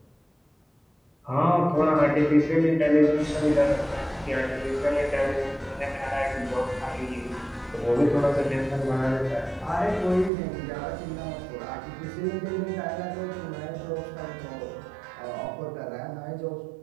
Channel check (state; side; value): drops out; left; at 10.3 s